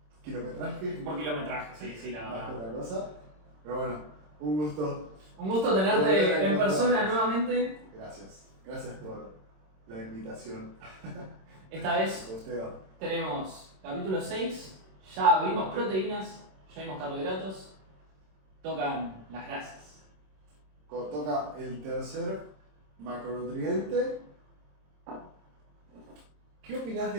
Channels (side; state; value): left; late; 26 ms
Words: kilometraje, Por kilometraje, sí, la más que verdad. otra cosa. Pero bueno, un gusto. Un gusto Volver a tenerte en encontrarnos. persona nuevamente. Gracias. Gracias por la invitación. Esta vez Posteo. tenemos capítulo 6, ya vimos proteínas, ya vimos carbohidratos, tocan las grasas. Toca el tercer macronutriente. ¿Qué opinás